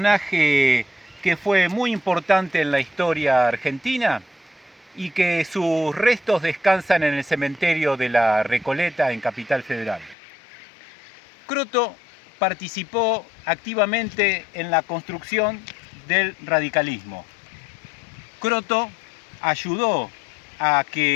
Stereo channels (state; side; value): drops out; right; at 10.2 s